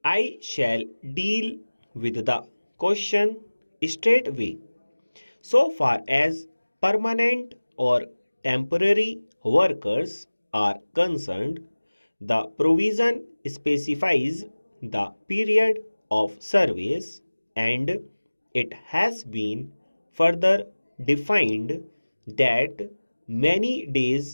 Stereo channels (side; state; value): both; inverted; correlation -1.00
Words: I shall deal with the question straightway. So far as permanent or temporary workers are concerned, the provision specifies the period of service, and it has been further defined that many